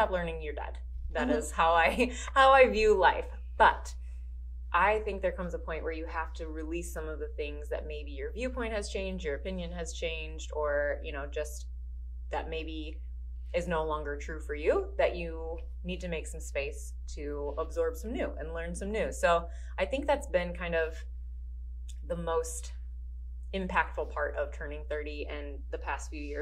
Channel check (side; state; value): both; identical; correlation 1.00